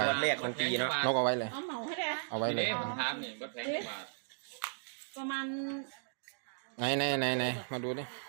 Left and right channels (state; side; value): silent; left; digital silence